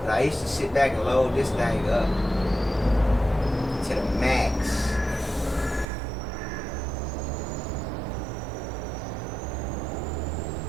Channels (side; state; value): left; drops out; at 5.9 s